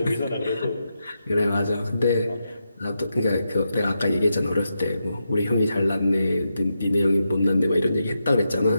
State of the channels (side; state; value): both; inverted; correlation -0.86